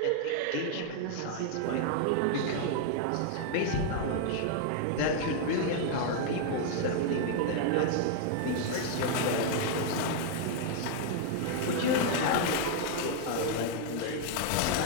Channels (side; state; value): both; different; correlation 0.00